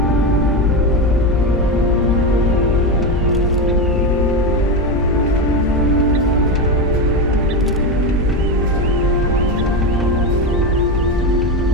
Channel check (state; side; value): normal; both; correlation 0.15